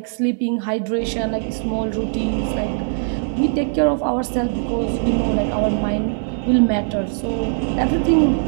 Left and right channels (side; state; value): left; silent; digital silence